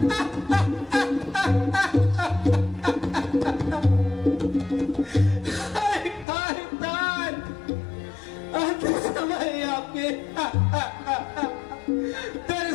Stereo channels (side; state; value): right; drops out; at 6.2 s